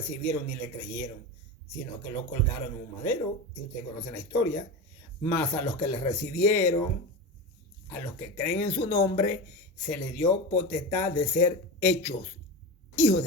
ni le creyeron, sino que lo colgaron en un madero, y ustedes conocen la historia. Mas a los que le recibieron, a los que creen en su nombre, se les dio potestad de ser hechos hijos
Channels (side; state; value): both; normal; correlation 0.23